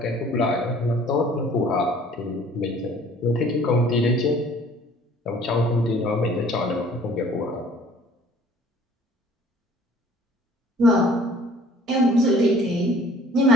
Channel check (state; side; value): normal; both; correlation 0.53